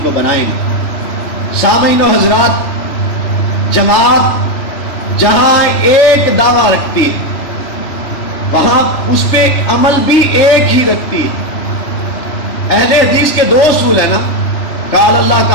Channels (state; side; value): late; right; 3.4 ms